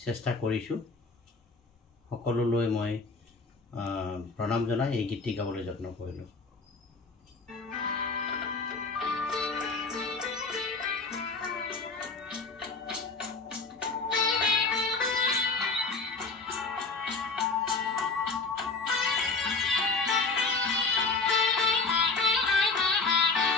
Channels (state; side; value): quieter; right; 4.0 dB